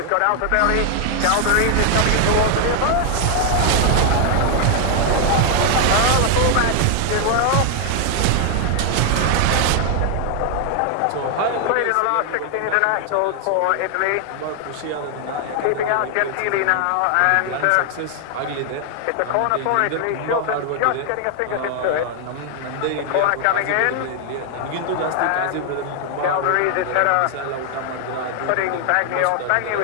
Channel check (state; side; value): different; both; correlation 0.00